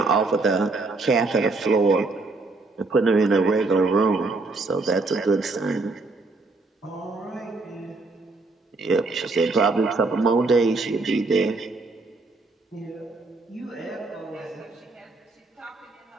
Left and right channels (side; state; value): left; quieter; 3.5 dB